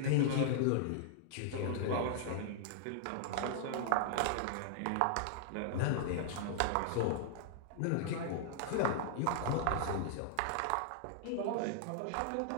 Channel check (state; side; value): different; both; correlation -0.01